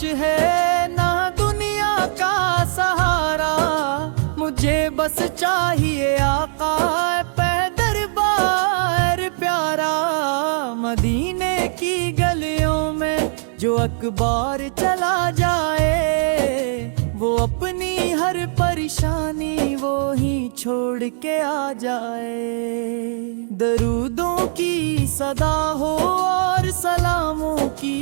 ہے نہ دنیا کا سہارا، مجھے بس چاہیے آقا پہ دربار پیارا۔ مدینے کی گلیوں میں جو اکبار چلا جائے، وہ اپنی ہر پریشانی وہی چھوڑ کے آ جائے۔ درودوں کی صدا ہو اور سلاموں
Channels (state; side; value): silent; left; digital silence